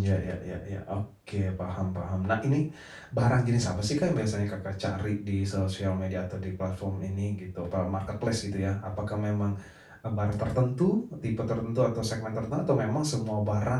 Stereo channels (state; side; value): identical; both; correlation 1.00